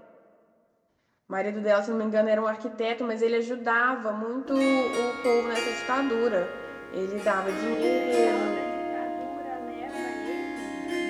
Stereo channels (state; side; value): identical; both; correlation 1.00